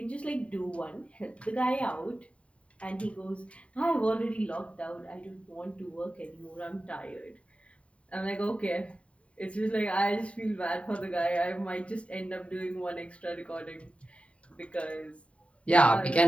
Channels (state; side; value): late; right; 0.063 ms